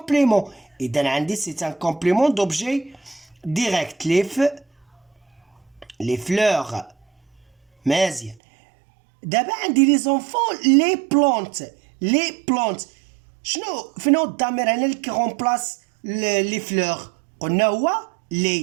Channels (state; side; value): drops out; left; at 8.3 s